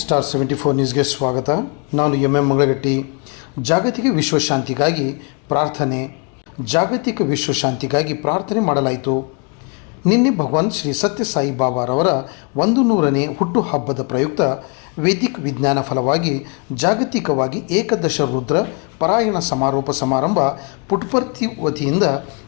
74 ನ್ಯೂಸ್ಗೆ ಸ್ವಾಗತ. ನಾನು ಎಂ ಮಂಗಳಗಟ್ಟಿ. ಜಾಗತಿಕ ವಿಶ್ವಶಾಂತಿಗಾಗಿ ಪ್ರಾರ್ಥನೆ. ಜಾಗತಿಕ ವಿಶ್ವಶಾಂತಿಗಾಗಿ ಪ್ರಾರ್ಥನೆ ಮಾಡಲಾಯಿತು. ನಿನ್ನೆ ಭಗವಾನ್ ಶ್ರೀ ಸತ್ಯ ಸಾಯಿ ಬಾಬಾರವರ 100ನೇ ಹುಟ್ಟುಹಬ್ಬದ ಪ್ರಯುಕ್ತ ವೇದಿಕ್ ವಿಜ್ಞಾನ ಫಲವಾಗಿ ಜಾಗತಿಕವಾಗಿ ಏಕದಶ ರುದ್ರ ಪಾರಾಯಣ ಸಮಾರೋಪ ಸಮಾರಂಭ ಪುಟ್ಪರ್ತಿ ವತಿಯಿಂದ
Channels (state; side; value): quieter; right; 34.4 dB